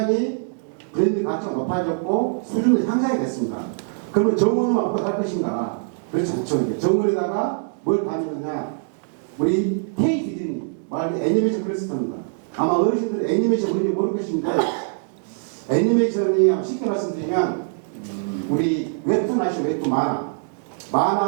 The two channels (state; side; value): silent; left; digital silence